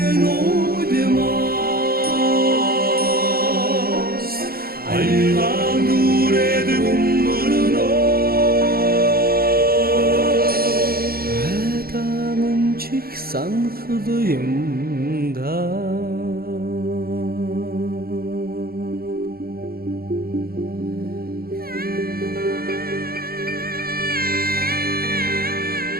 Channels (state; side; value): late; left; 0.44 ms